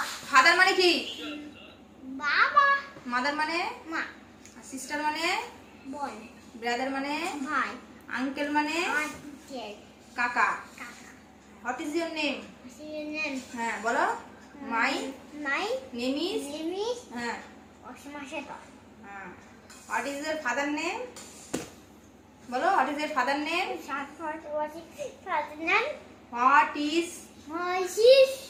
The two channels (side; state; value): both; identical; correlation 1.00